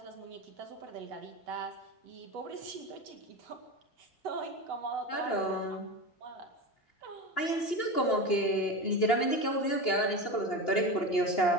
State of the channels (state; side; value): late; right; 2.8 ms